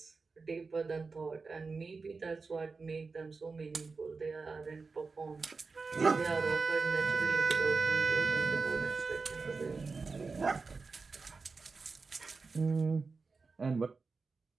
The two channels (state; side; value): quieter; left; 4.4 dB